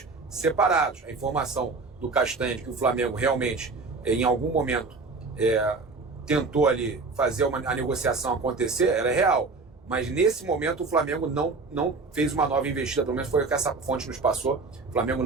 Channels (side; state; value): left; quieter; 4.0 dB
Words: separados. A informação do Castanha de que o Flamengo realmente, em algum momento, tentou ali fazer a negociação acontecer, ela é real. Mas nesse momento o Flamengo não fez uma nova investida, pelo menos foi o que essa fonte nos passou. O Flamengo